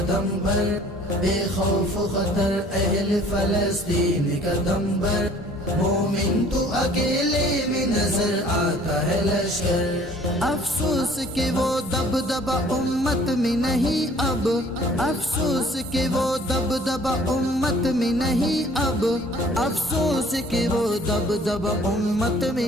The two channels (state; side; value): normal; both; correlation 0.54